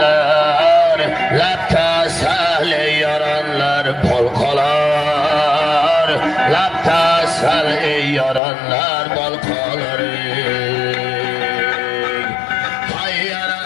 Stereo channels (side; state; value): right; drops out; at 8.4 s